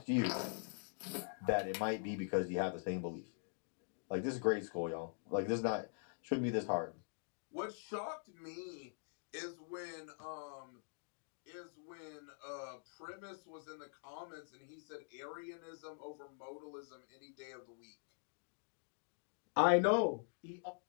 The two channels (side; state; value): right; silent; digital silence